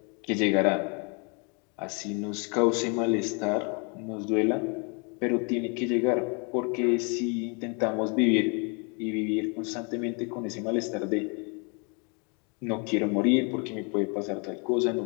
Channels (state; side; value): quieter; right; 34.6 dB